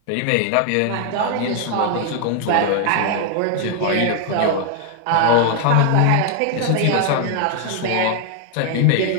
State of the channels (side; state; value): both; different; correlation 0.00